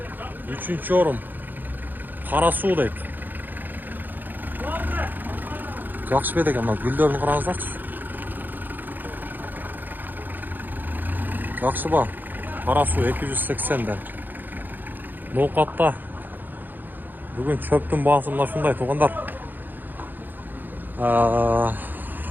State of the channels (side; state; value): left; late; 0.088 ms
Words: 3-ші орын. Қара су дейді. Жақсы беді екен, гүлдерін қараңыздаршы. Жақсы ба? Қара су 280-ден. Ноқатта бүгін чөптің бағасы мына шындай туғандар.